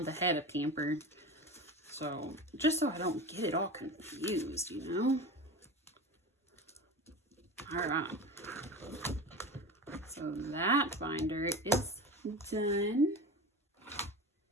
ahead of camper. So, just so I don't get it all confused, you know? Alright. So that binder is done.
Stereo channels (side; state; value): both; normal; correlation 0.30